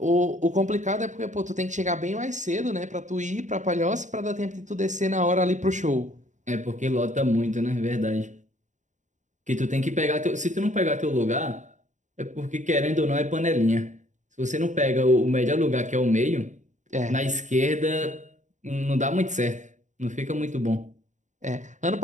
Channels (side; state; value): left; late; 0.35 ms